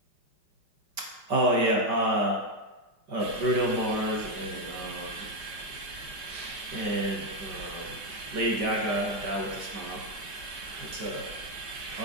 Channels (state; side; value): late; left; 5.2 ms